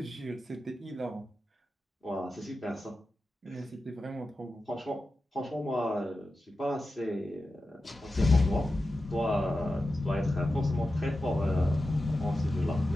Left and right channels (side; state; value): both; normal; correlation 0.92